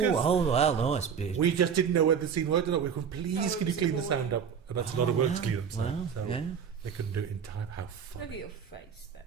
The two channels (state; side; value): quieter; left; 7.2 dB